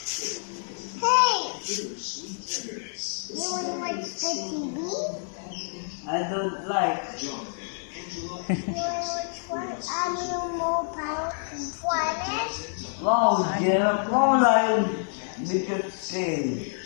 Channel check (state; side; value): silent; right; digital silence